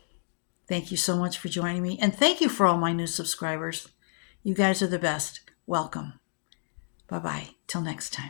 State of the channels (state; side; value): silent; right; digital silence